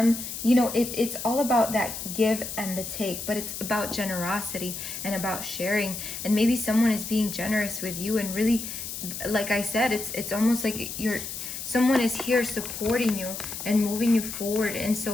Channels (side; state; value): left; noise; hiss, 7 dB below the sound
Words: You know, it's all about that give and the take, but it's about generosity and about sharing. And maybe someone is being generous with you, and really, like I said, it's almost like someone is here supporting you and moving you forward. And